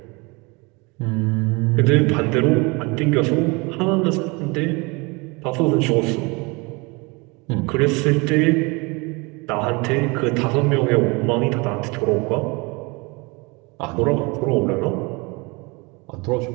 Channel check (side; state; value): left; quieter; 27.3 dB